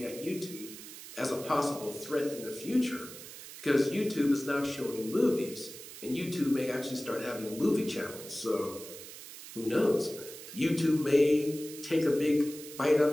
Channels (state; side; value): noise; right; hiss, 14 dB below the sound